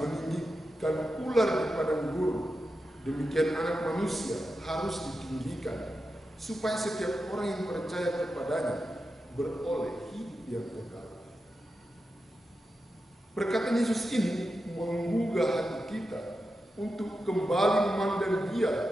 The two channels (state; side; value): normal; both; correlation 0.90